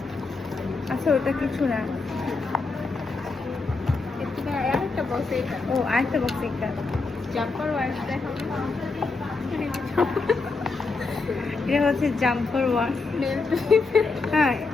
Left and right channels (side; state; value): right; quieter; 3.9 dB